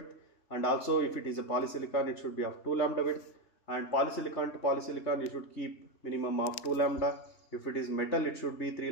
and also if it is a polysilicon, it should be of 2 lambda width, and polysilicon to polysilicon you should keep minimum of 2 lambda. If it is metal, it should be 3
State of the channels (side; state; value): right; late; 3.4 ms